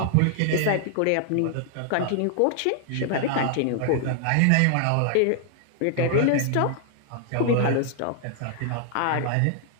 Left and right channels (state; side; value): different; both; correlation 0.00